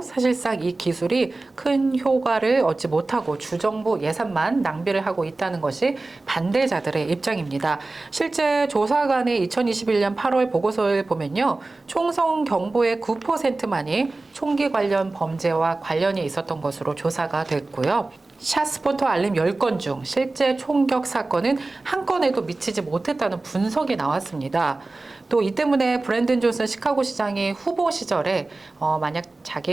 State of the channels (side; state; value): left; quieter; 3.2 dB